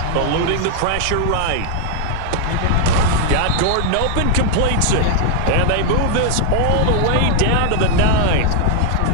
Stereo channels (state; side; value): different; both; correlation 0.00